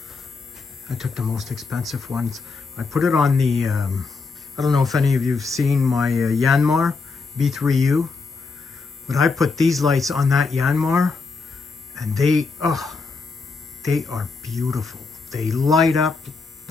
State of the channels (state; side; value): quieter; right; 4.4 dB